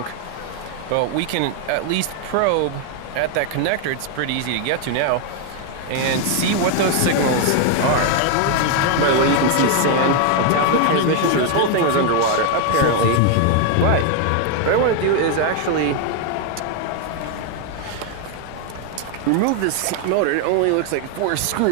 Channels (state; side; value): different; both; correlation 0.00